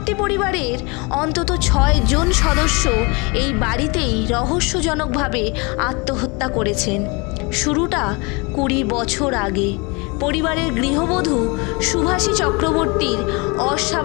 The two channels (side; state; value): right; quieter; 28.8 dB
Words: পরিবারের অন্তত 6 জন সদস্য এই বাড়িতেই রহস্যজনকভাবে আত্মহত্যা করেছেন। শুরুটা 20 বছর আগে পরিবারের গৃহবধূ সুভাষী চক্রবর্তীর